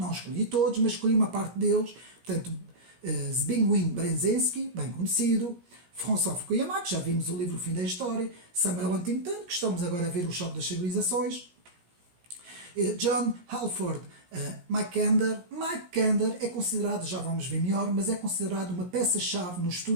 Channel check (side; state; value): left; late; 17 ms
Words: escolhi todos, mas escolhi uma parte deles. Portanto, Zbigniew Brzezinski, bem conhecido, François Fukuyama, que já vimos o livro O Fim da História, Samuel Huntington, que estamos agora a ver O Choque das Civilizações, John Halford Mackinder. Mackinder é considerado, já vamos ver melhor, mas é considerado uma peça-chave no